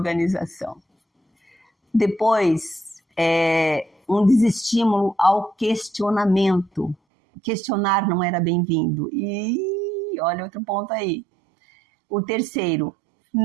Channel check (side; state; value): left; drops out; at 7.0 s